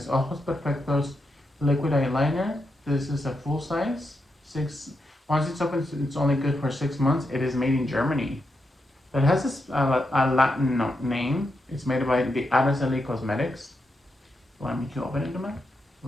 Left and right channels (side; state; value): both; normal; correlation 0.84